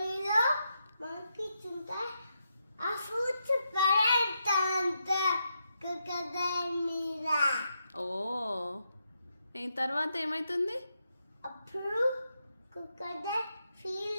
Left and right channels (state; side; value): inverted; both; correlation -0.83